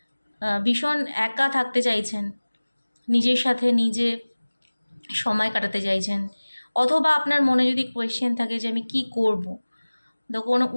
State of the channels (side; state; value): both; inverted; correlation -1.00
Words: ভীষণ একা থাকতে চাইছেন, নিজের সাথে নিজে সময় কাটাতে চাইছেন, অথবা আপনার মনে যদি কোয়েশ্চেন থাকে যে আমি কি করব, তো কোনো